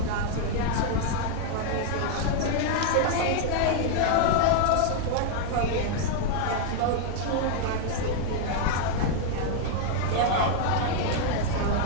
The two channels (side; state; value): both; different; correlation 0.00